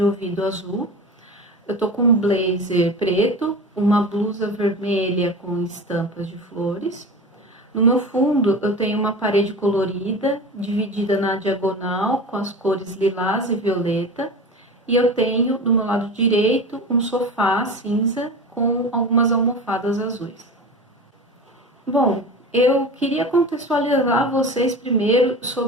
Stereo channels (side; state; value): both; normal; correlation 0.31